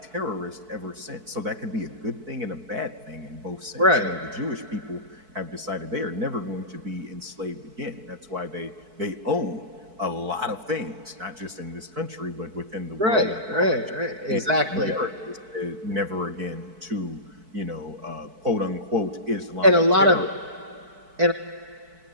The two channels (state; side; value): late; left; 4.6 ms